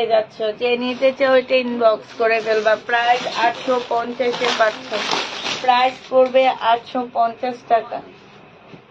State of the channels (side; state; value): both; identical; correlation 1.00